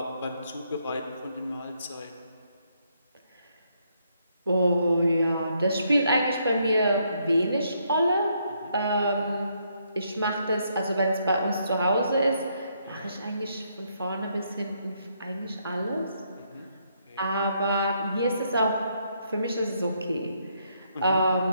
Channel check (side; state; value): both; inverted; correlation -0.74